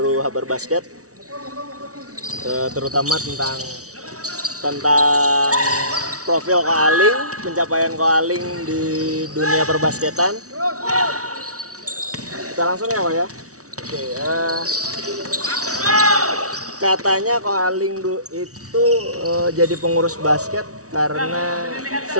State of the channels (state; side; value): late; left; 0.66 ms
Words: Habar Basket, terutama tentang profil Ko Aling, pencapaian Ko Aling di dunia perbasketan. Kita langsung ya, Pak ya. Oke, katanya Ko Aling itu jadi pengurus basket karena